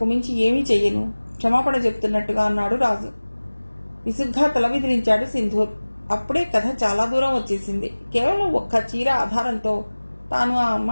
మించి ఏమీ చెయ్యను, క్షమాపణ చెప్తున్నట్టుగా అన్నాడు రాజు. విసుగ్గా తల విదిలించాడు సింధూర్. అప్పుడే కథ చాలా దూరం వచ్చేసింది. కేవలం ఒక్క చీర ఆధారంతో తాను ఆ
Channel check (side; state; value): both; inverted; correlation -1.00